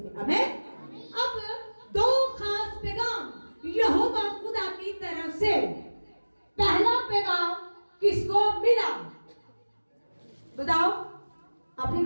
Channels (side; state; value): both; inverted; correlation -1.00